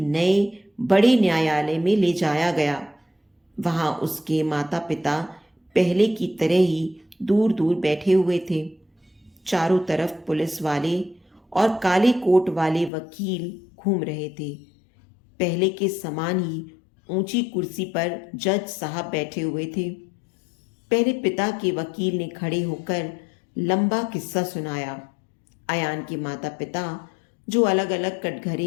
बड़े न्यायालय में ले जाया गया। वहां उसके माता पिता पहले की तरह ही दूर दूर बैठे हुए थे। चारों तरफ पुलिस वाले और काले कोट वाले वकील घूम रहे थे। पहले के समान ही ऊंची कुर्सी पर जज साहब बैठे हुए थे। पहले पिता के वकील ने खड़े होकर लंबा किस्सा सुनाया। अयान के माता पिता, जो अलग अलग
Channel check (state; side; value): drops out; right; at 12.9 s